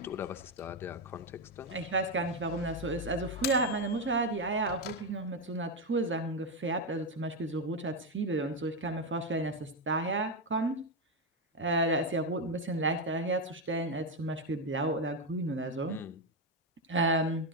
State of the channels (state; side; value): normal; both; correlation 0.07